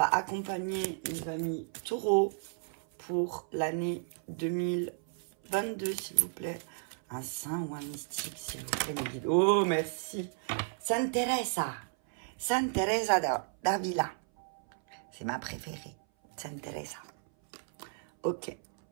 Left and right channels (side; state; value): left; silent; 56 dB below the other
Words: accompagner nos amis taureaux pour l'année 2022, s'il vous plaît. Un saint ou un mystique, s'il vous plaît, mes guides. Oh, merci. Sainte Teresa. Sainte Teresa d'Avila. C'est ma préférée. Sainte Teresa. Ok.